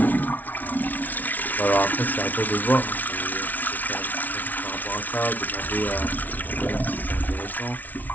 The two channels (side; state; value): right; late; 0.080 ms